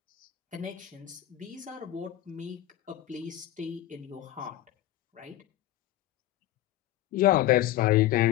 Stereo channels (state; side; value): quieter; right; 14.1 dB